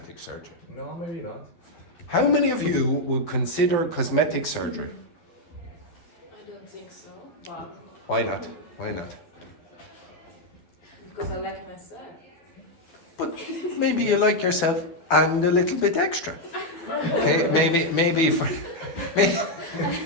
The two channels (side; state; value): right; late; 12 ms